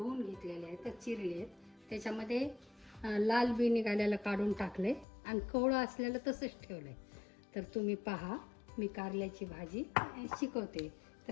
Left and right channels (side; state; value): right; drops out; at 5.1 s